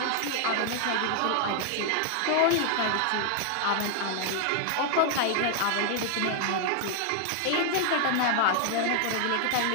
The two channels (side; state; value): both; different; correlation 0.00